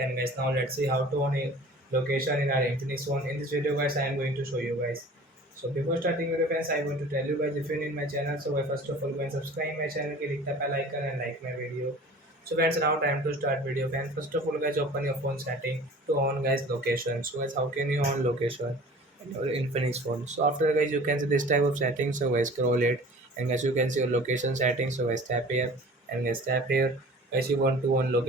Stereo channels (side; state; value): both; normal; correlation 0.44